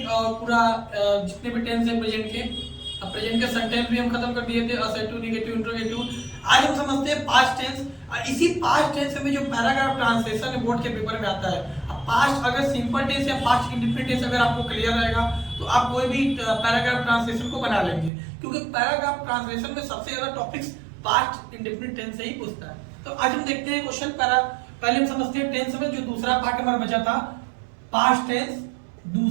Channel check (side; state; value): left; drops out; at 18.1 s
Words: और पूरा जितने भी टेंस है प्रेजेंट के। अब प्रेजेंट के सेंटेंस भी हम खत्म कर दिए थे, असर्टिव, नेगेटिव, इंट्रोगेटिव। आज हम समझते हैं पास्ट टेंस। इसी पास्ट टेंस में जो पैराग्राफ ट्रांसलेशन है बोर्ड के पेपर में आता है। अब पास्ट अगर सिंपल टेंस या पास्ट इंडेफिनिट टेंस अगर आपको क्लियर रहेगा तो आप कोई भी पैराग्राफ ट्रांसलेशन को बना लेंगे, क्योंकि पैराग्राफ ट्रांसलेशन में सबसे ज्यादा टॉपिक्स पास्ट इंडेफिनिट टेंस से ही पूछता है। तो आज हम देखते हैं क्वेश्चन पहले हम समझते हैं टेंस में जो दूसरा पार्ट हमारा बचा था पास्ट टेंस,